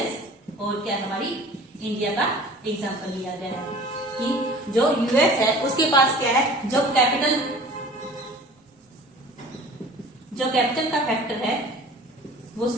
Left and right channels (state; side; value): normal; both; correlation 0.45